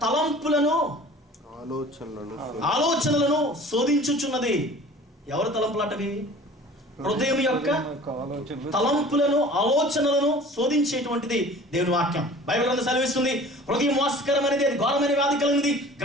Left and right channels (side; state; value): both; normal; correlation 0.45